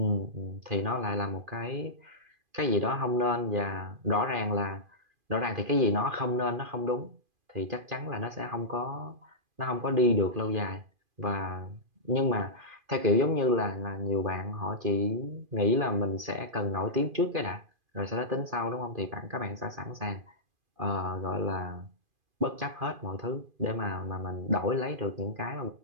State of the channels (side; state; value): left; late; 2.5 ms